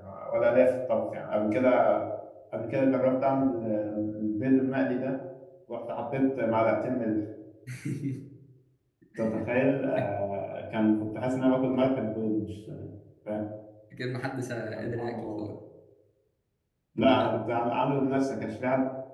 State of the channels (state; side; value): identical; both; correlation 1.00